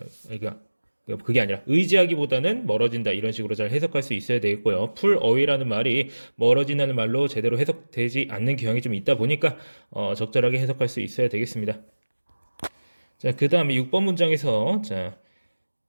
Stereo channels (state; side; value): inverted; both; correlation -1.00